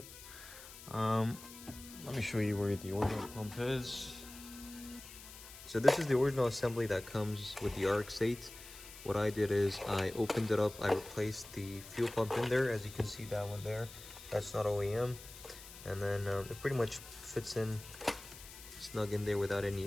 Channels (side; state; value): left; noise; hiss, 16 dB below the sound